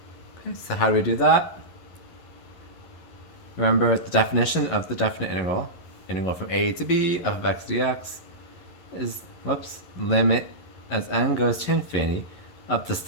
Okay, so how do we do that? Remember the definition of the definite integral. Integral from a to b f of x dx is, limit as n goes to infinity of the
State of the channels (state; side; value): late; right; 11 ms